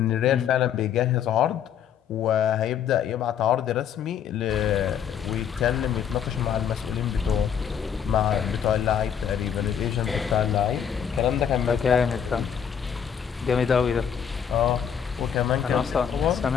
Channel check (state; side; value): quieter; right; 8.2 dB